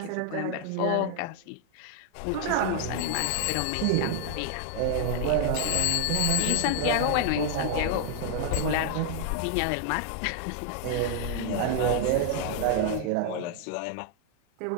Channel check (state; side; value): different; both; correlation 0.00